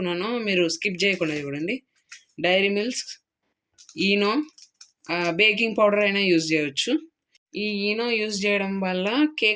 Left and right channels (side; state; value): both; identical; correlation 1.00